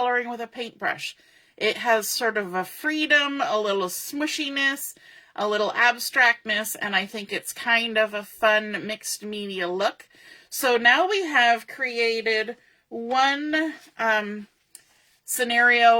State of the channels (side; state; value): both; identical; correlation 1.00